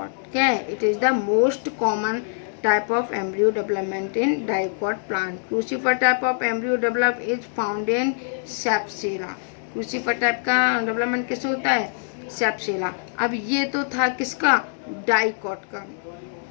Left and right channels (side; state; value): right; silent; digital silence